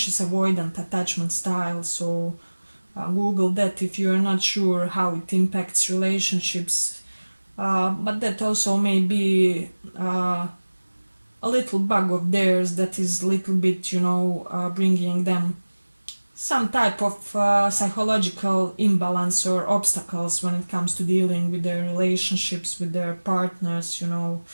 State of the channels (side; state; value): both; inverted; correlation -1.00